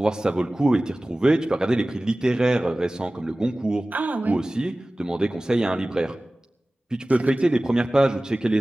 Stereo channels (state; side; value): normal; both; correlation 0.97